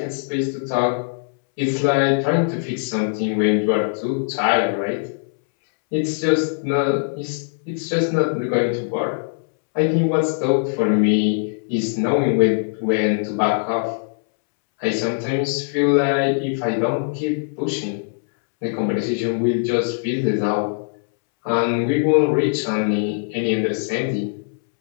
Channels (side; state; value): right; silent; 65 dB below the other